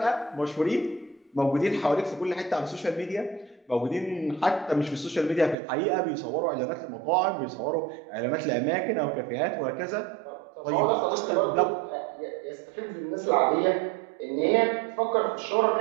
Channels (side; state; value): left; drops out; at 5.6 s